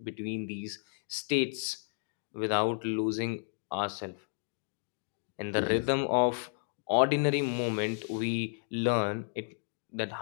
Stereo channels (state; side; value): silent; right; digital silence